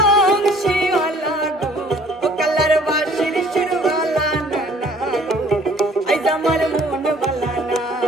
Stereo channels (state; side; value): normal; both; correlation 0.55